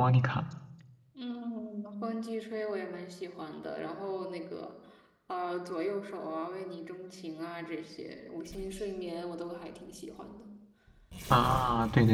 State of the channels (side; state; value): both; identical; correlation 1.00